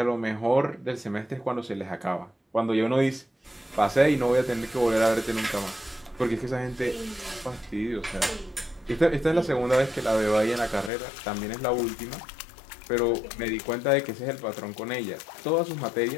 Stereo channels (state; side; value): drops out; right; at 10.9 s